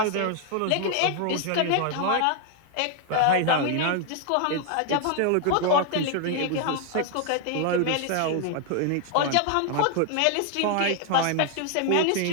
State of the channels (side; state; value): both; different; correlation 0.00